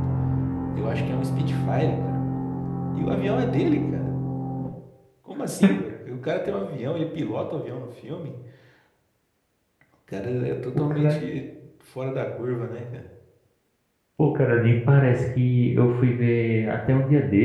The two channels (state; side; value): identical; both; correlation 1.00